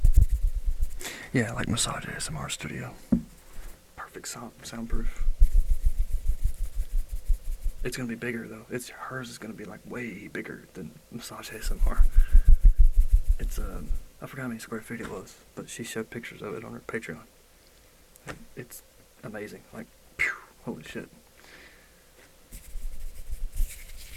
Yeah, like Massage ASMR Studio. Perfect soundproof. It's gonna be bigger though. Hers is gonna be like way bigger than Massage ASMR. It's I forgot how many square feet it was, but she showed pictures of it on her Patreon. And it's amazing. Like, phew, holy shit.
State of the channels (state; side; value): identical; both; correlation 1.00